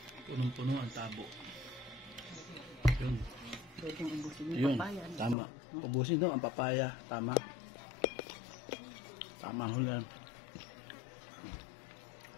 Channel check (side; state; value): right; drops out; at 5.4 s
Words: Punong-puno ang tabo. Yun. Pwedeng ubusin yung Yun. papaya. Tama. Ubusin daw ang papaya. Tama. Tama ho yan.